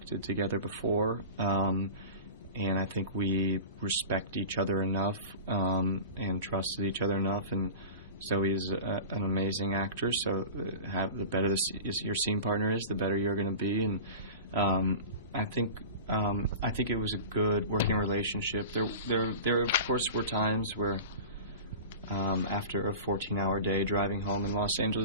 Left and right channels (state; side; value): inverted; both; correlation -0.34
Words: together before, and I think we respect each other enough and trusted each other enough. And Zoe's an amazing actor, so the better your scene partner is, the better you're going to be. And I think it was a good working relationship. There of course were times where after a 14-hour day driving home in Los